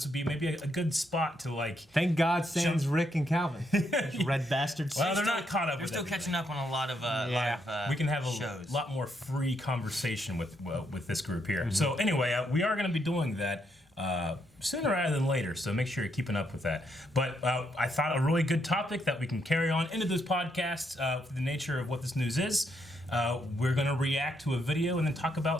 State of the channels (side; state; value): both; normal; correlation 0.77